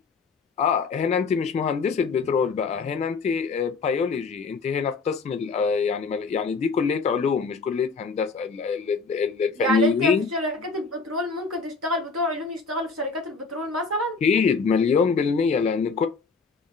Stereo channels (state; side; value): quieter; right; 4.6 dB